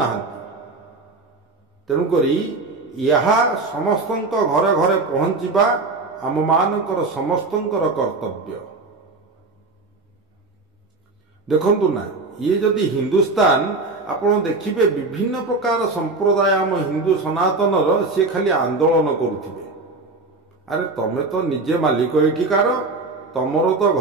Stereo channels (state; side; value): quieter; left; 3.5 dB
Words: ତେଣୁକରି ଏହା ସମସ୍ତଙ୍କ ଘରେ ଘରେ ପହଞ୍ଚିବା ଆମମାନଙ୍କର ସମସ୍ତଙ୍କର କର୍ତ୍ତବ୍ୟ। ଦେଖନ୍ତୁ ନା, ଇଏ ଯଦି ହିନ୍ଦୁସ୍ତାନ, ଆପଣ ଦେଖିବେ ବିଭିନ୍ନ ପ୍ରକାର ସମ୍ପ୍ରଦାୟ ଆମ ହିନ୍ଦୁ ସନାତନର, ସିଏ ଖାଲି ଆନ୍ଦୋଳନ କରୁଥିବେ। ଆରେ ତମେ ତ ନିଜେ ମାଲିକ ଏଠିକାର, ତମର ତ